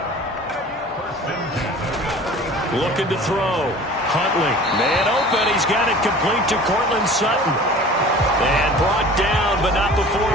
Looking to throw. Huntley. Man open. He's got it complete to Cortland Sutton. And brought down, but not before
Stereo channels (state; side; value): normal; both; correlation 0.43